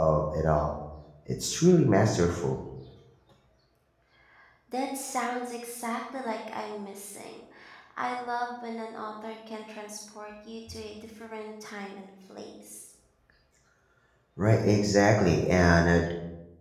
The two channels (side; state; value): both; identical; correlation 1.00